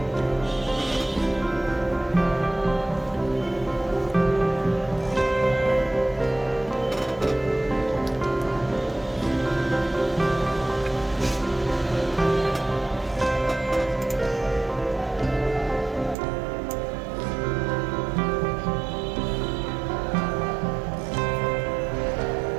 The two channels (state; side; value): drops out; left; at 16.2 s